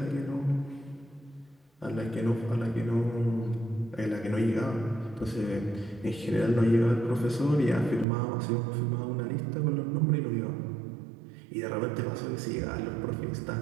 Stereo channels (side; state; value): left; drops out; at 8.1 s